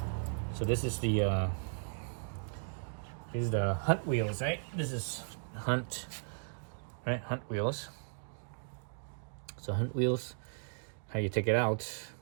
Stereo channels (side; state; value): left; silent; digital silence